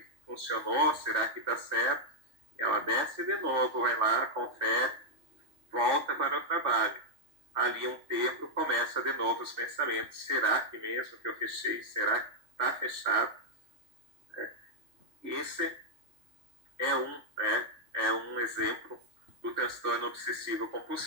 funcionou? Será que está certo? Ela desce de novo, vai lá, confere, volta para o trabalho. Ali um tempo começa de novo os pensamentos. Será que mesmo que eu fechei? Será que está fechado? Esse é um exemplo do transtorno obsessivo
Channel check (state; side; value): late; left; 3.5 ms